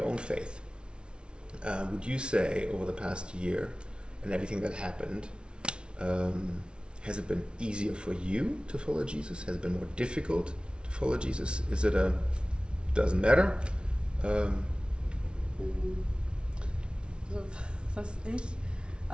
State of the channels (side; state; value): left; late; 0.057 ms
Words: own faith? Would you say over the past year and everything that happened, has it been easier for you to follow Jesus? Has it been more difficult to follow Jesus? Is it doesn't matter? So, was ich